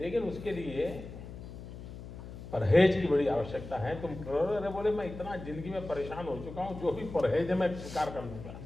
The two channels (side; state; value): left; noise; hum, 12 dB below the sound